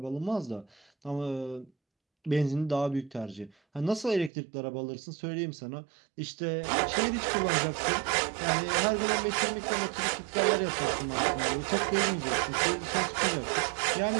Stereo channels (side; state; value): left; drops out; at 4.3 s